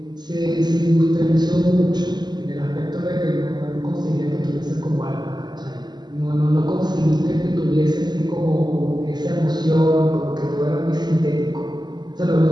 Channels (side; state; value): left; late; 0.21 ms